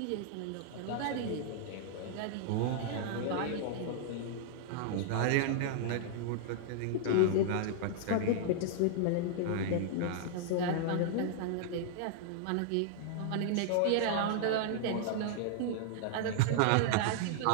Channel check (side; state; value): both; different; correlation -0.01